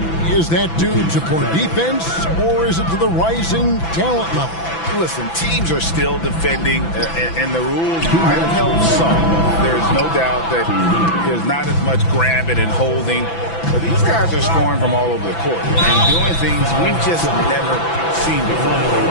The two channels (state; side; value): late; right; 6.0 ms